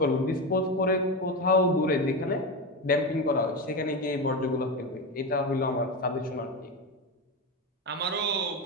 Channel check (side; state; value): both; normal; correlation 0.17